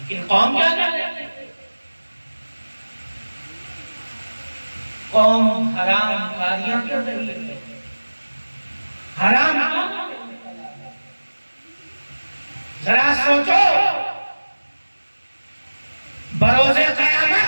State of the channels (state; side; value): inverted; both; correlation -1.00